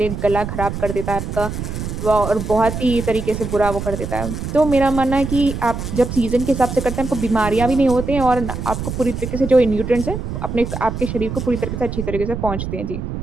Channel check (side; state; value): right; noise; rumble, 5 dB below the sound